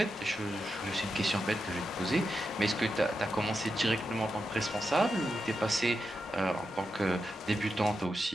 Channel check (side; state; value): both; normal; correlation 0.87